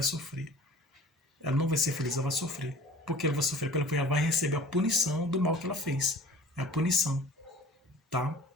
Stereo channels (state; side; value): normal; both; correlation 0.45